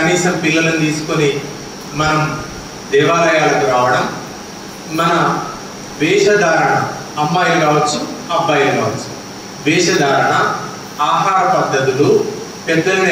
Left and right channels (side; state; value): both; identical; correlation 1.00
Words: పిల్లలను తీసుకొని మనం దేవాలయాలకు రావడం, మన వేషధారణ, అమ్మాయిలు కావచ్చు అబ్బాయిలు కావచ్చు, వేషధారణ, ఆహార పద్ధతులు, పెద్దలను